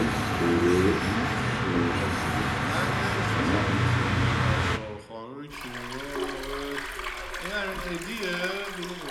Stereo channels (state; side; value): identical; both; correlation 1.00